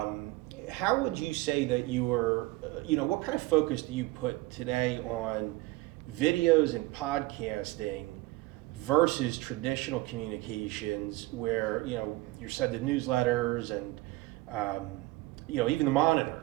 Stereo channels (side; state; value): left; quieter; 19.5 dB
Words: How would you say that what kind of focus do you put today on videos and podcasting versus traditional communications where, you're sending newsletters and, even the